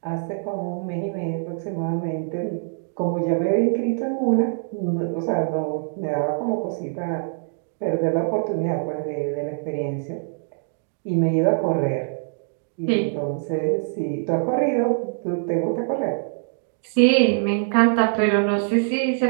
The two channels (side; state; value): left; silent; digital silence